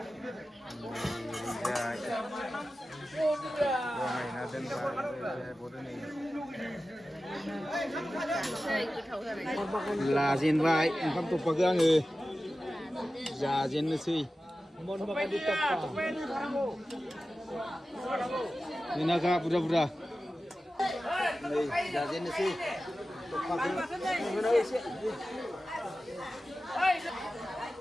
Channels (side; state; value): both; normal; correlation 0.94